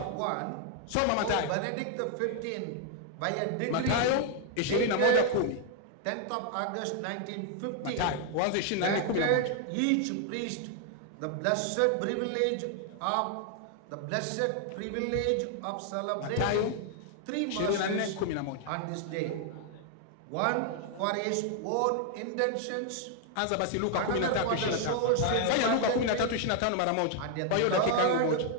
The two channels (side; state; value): both; different; correlation 0.00